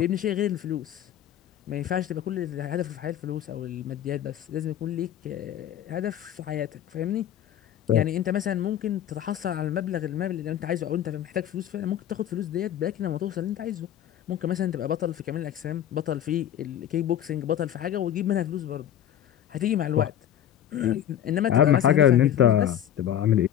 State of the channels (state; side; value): quieter; right; 10.7 dB